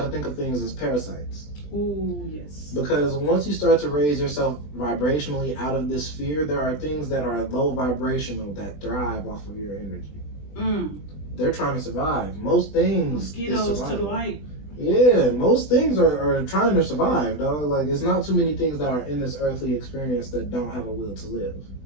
to think of things as parasites. Ooh, yes. Because once you start to raise yourself vibrationally out of this sphere, there are things that are low vibrational that thrive off of your energy. They're trying to survive. Most things, mosquitoes to the light. Yeah, most things are trying to survive, dog. Like, it's not too many things that are in this earthly experience that don't have a will to live.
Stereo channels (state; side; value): late; right; 20 ms